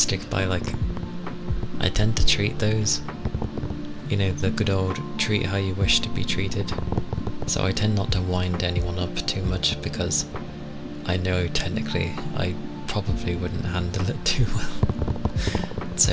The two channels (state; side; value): identical; both; correlation 1.00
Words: by, like, I tend to treat those, you know, the good old treat how you wish to be treated. So I tend not to wind anyone up too much, because I know technically I probably wouldn't handle it too well. So